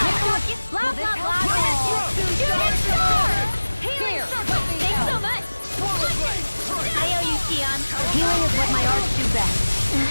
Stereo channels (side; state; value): both; inverted; correlation -1.00